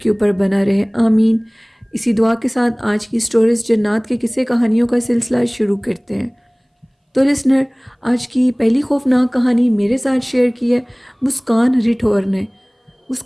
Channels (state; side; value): identical; both; correlation 1.00